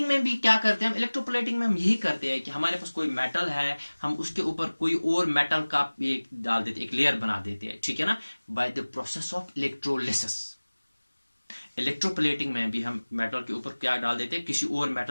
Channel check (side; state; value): both; inverted; correlation -1.00